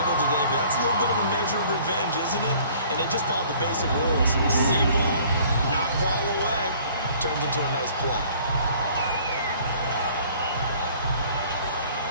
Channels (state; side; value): inverted; both; correlation -0.54